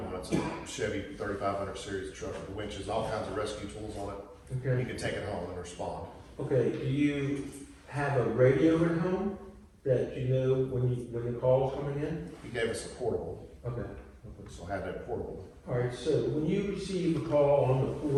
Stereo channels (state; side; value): identical; both; correlation 1.00